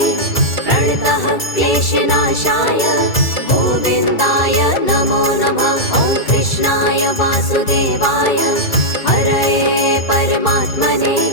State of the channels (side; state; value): right; late; 2.3 ms